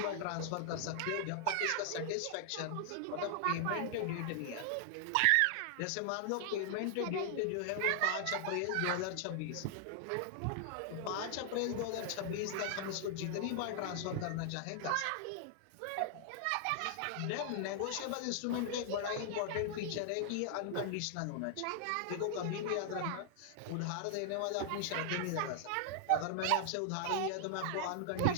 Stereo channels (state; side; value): different; both; correlation -0.01